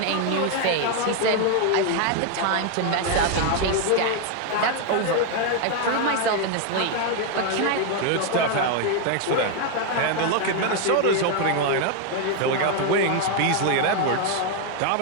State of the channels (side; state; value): both; different; correlation 0.01